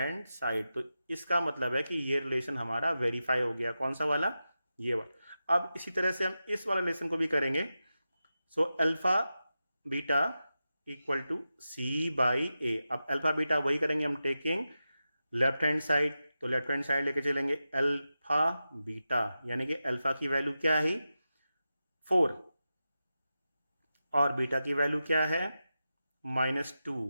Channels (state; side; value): inverted; both; correlation -0.91